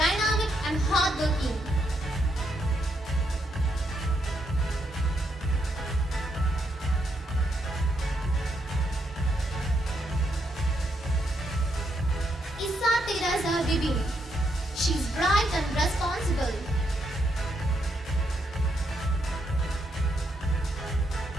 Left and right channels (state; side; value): normal; both; correlation 0.77